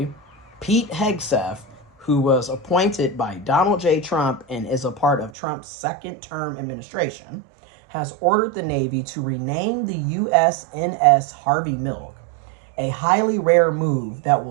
Pete Hegseth, who was appointed by Donald J. Trump and is a part of Trump's second-term administration, has ordered the Navy to rename the USNS Harvey Milk, a highly rare move that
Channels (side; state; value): left; drops out; at 5.3 s